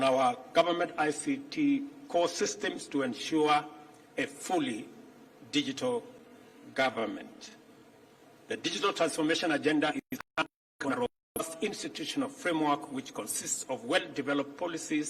our government ICT core systems to ensure a fully digital government. The digital transformation agenda is a robust institutional framework which consists of well-developed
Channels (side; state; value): both; identical; correlation 1.00